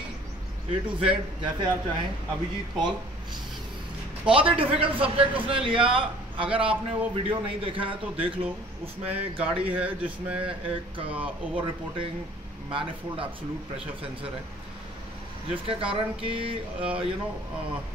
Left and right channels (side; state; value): both; normal; correlation 0.52